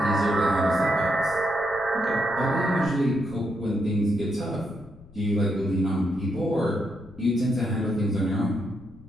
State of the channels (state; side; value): noise; left; rumble, 22 dB below the sound